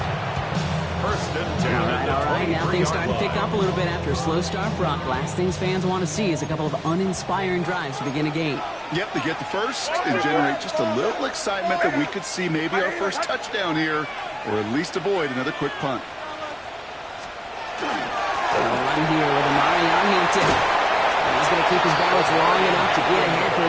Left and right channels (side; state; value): both; identical; correlation 1.00